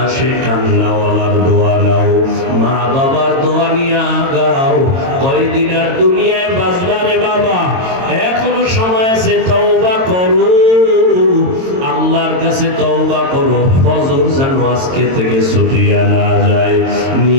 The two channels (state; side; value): late; left; 22 ms